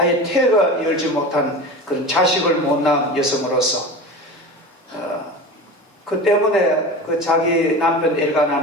태가 열지 못한 그런 자식을 못 낳은 여성으로서 그 때문에 그 자기 남편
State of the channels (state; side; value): normal; both; correlation 0.31